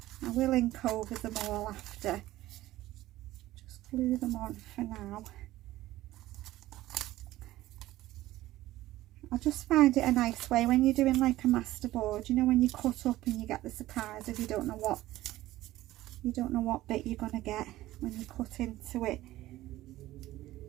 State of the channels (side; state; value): left; quieter; 15.9 dB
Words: I will ink over them all after, just glue them on for now. I just find it a nice way when you're doing like a masterboard, you know, when you cut up and you get the surprise if you don't know what bit you're gonna get when you cut into it.